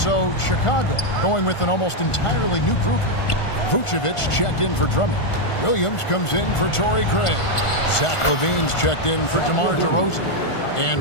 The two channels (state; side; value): late; right; 1.5 ms